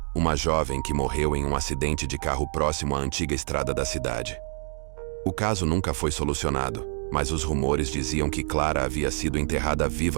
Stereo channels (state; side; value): silent; left; digital silence